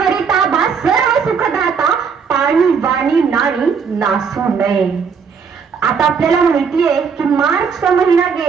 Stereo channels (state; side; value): quieter; left; 6.1 dB